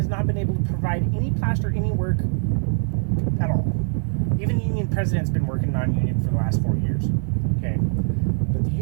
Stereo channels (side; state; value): left; silent; digital silence